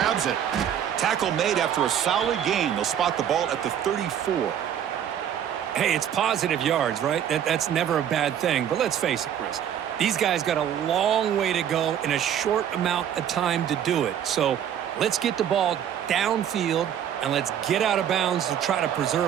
it. Tackle made after a solid gain. They'll spot the ball at the 34. Hey, it's positive yards, right? That's never a bad thing. But let's face it, Chris. These guys got a long way to go in a short amount of time to do it. So let's get the ball downfield, and let's get out of bounds to try to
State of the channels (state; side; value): quieter; left; 9.6 dB